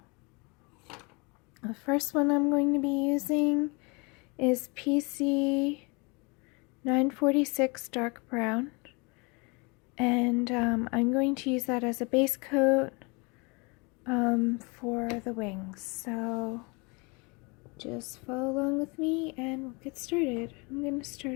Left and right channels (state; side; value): quieter; right; 29.5 dB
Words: the first one I'm going to be using is PC 946 dark brown, and I'm going to use that as a base coat for the wings. So just follow along with me and we'll get started. I'm going to